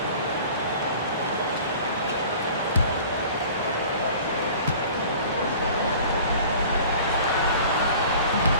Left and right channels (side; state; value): both; inverted; correlation -0.45